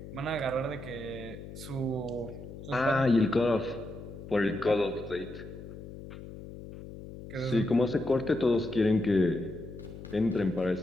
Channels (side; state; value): left; noise; hum, 13 dB below the sound